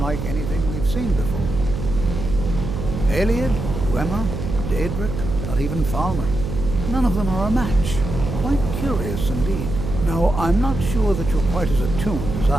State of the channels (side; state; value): right; noise; hum, 5 dB below the sound